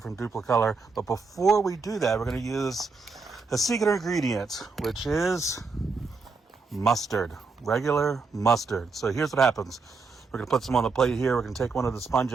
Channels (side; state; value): left; quieter; 4.4 dB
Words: from Duplicolor. But before we do that, we're going to use a secret ingredient, which is mustard, regular mustard. So here's what happens. We're going to put some on the plate here. We're going to take one of the